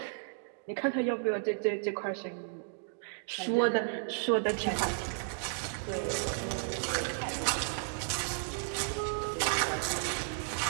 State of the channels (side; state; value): left; silent; digital silence